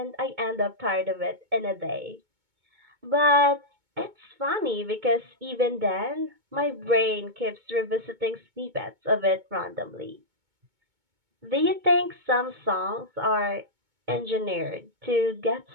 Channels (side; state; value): left; late; 2.2 ms